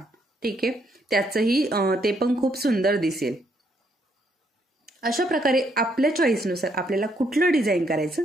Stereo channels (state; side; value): normal; both; correlation 0.73